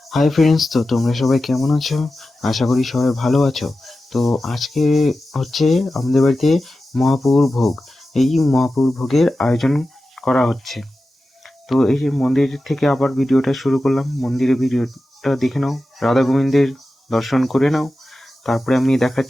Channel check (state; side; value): normal; both; correlation 0.93